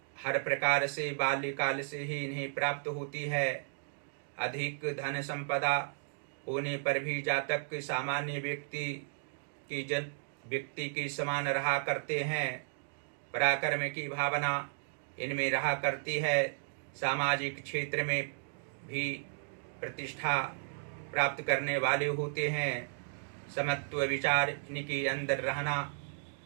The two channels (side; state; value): left; silent; digital silence